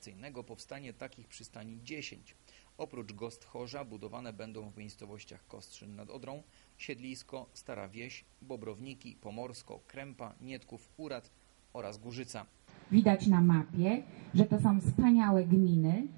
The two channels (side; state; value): left; silent; 53 dB below the other